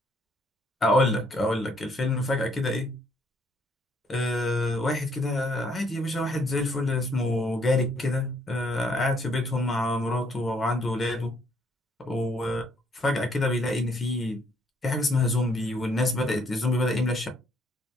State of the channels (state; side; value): normal; both; correlation 0.68